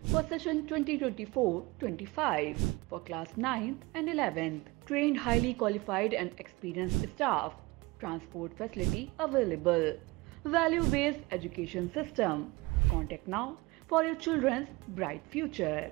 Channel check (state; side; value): quieter; left; 22.9 dB